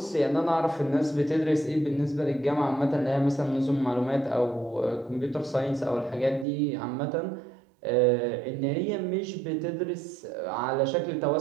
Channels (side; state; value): left; drops out; at 6.5 s